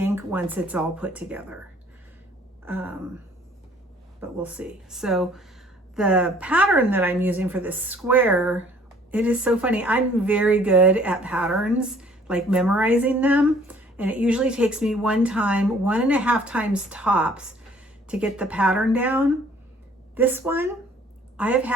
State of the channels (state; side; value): normal; both; correlation 0.57